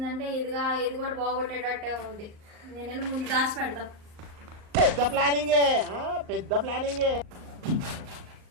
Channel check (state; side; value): late; left; 38 ms